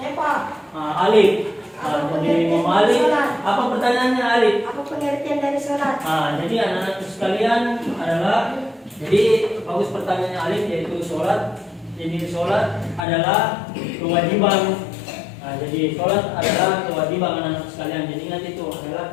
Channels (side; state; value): right; drops out; at 13.1 s